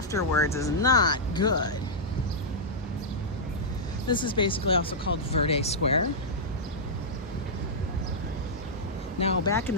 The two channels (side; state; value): both; normal; correlation -0.09